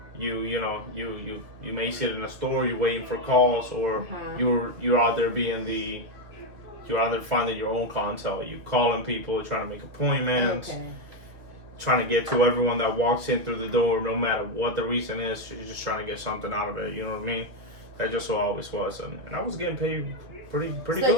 you may sit in a store, you're waiting for calls, or you're out there you're out there finding your own clientele. You're calling people, trying to make appointments. Okay. Trying to get to everyone that walks in through the door, no matter what the reason is. You're just trying to get something out of it. You know what I mean? That just what I always was, and I was getting paid pretty good. So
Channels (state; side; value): late; left; 2.6 ms